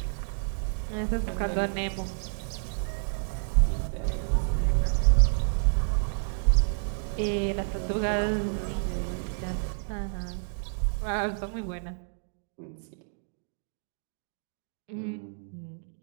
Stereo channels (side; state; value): left; silent; digital silence